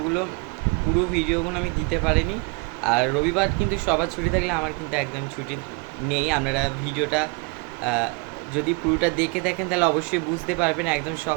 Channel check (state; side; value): quieter; left; 31.6 dB